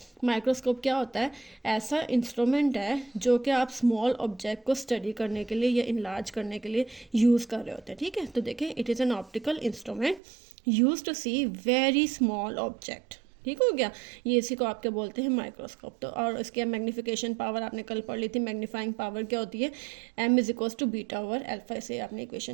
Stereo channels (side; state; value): left; drops out; at 10.2 s